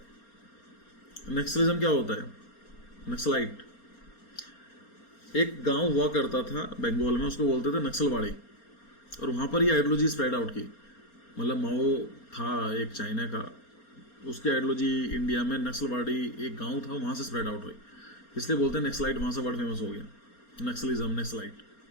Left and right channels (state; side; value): late; right; 4.3 ms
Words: नक्सलिज्म क्या होता है? नक्सलाइट। एक गांव हुआ करता था बंगाल में, उसको बोलते थे नक्सलवाड़ी, और वहाँ पर ये आइडियोलॉजी स्प्रेड आउट की। मतलब माओ था एक चाइना का, उसकी आइडियोलॉजी इंडिया में, नक्सलवाड़ी एक गांव था वहाँ से स्प्रेड आउट हुई, इसलिए बोलते हैं नक्सलाइट, वहाँ से वर्ड फेमस हो गया नक्सलिज्म, नक्सलाइट।